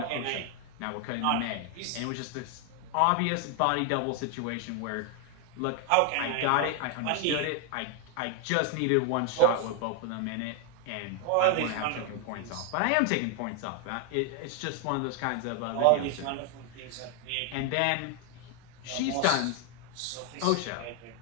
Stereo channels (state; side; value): different; both; correlation 0.00